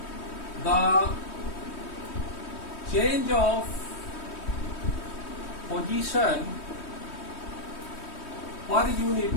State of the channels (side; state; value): right; late; 3.2 ms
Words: the change of position per unit